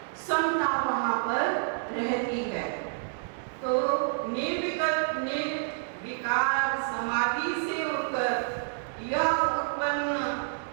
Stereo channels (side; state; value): left; silent; digital silence